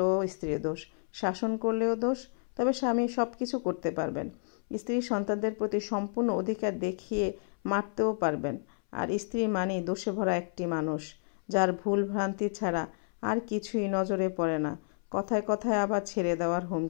স্ত্রীর দোষ। শাসন করলেও দোষ। তবে স্বামী সব কিছু করতে পারবেন। স্ত্রী সন্তানদের প্রতি সম্পূর্ণ অধিকার দেখিয়ে মারতেও পারবেন। আর স্ত্রী মানেই দোষে ভরা একটি মানুষ, যার ভুল ভ্রান্তি ছাড়া আর কিছুই নজরে পড়ে না। কথায় কথায় আবার ছেড়ে দেওয়ার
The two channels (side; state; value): right; silent; 57 dB below the other